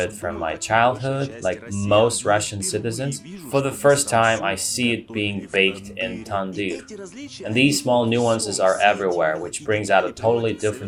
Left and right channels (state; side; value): identical; both; correlation 1.00